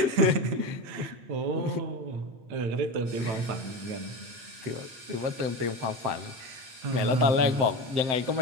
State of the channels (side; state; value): left; late; 8.2 ms